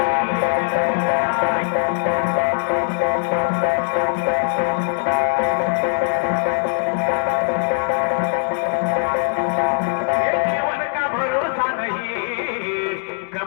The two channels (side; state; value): right; silent; digital silence